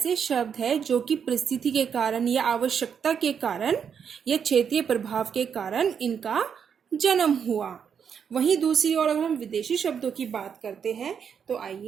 शब्द है जो कि परिस्थिति के कारण या आवश्यकता के कारण या क्षेत्रीय प्रभाव के कारण इनका जन्म हुआ। वहीं दूसरी ओर अगर हम विदेशी शब्दों की बात करते हैं तो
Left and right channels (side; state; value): left; quieter; 7.3 dB